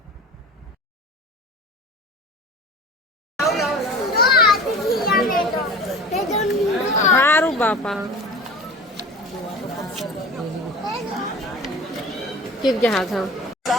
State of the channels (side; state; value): both; normal; correlation 0.38